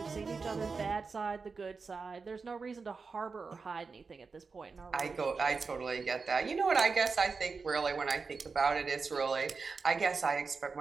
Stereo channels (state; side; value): quieter; left; 4.7 dB